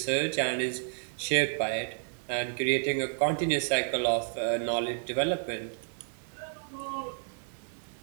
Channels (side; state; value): left; silent; digital silence